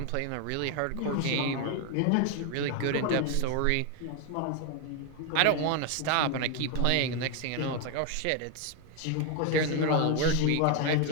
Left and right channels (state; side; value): different; both; correlation 0.01